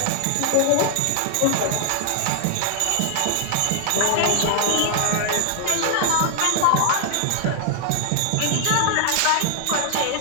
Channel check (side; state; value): both; different; correlation 0.00